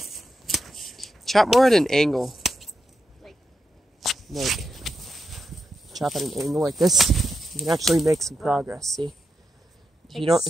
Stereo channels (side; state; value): both; normal; correlation 0.86